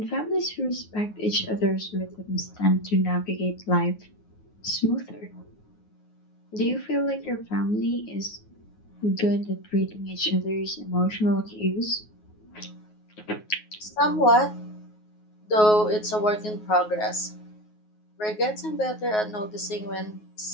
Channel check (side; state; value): right; late; 9.4 ms